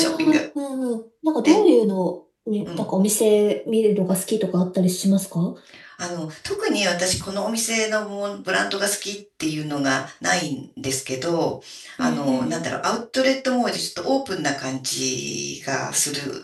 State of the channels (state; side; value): identical; both; correlation 1.00